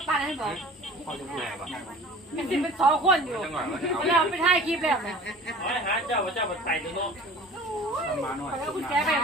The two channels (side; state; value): both; normal; correlation 0.43